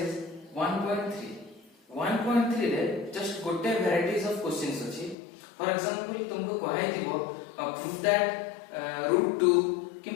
1.3 1.3 रे just गोटे varieties of questions अछि। फॉर एग्जांपल तुमको कहाई दिबो प्रूफ दैट √2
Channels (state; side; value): drops out; right; at 5.2 s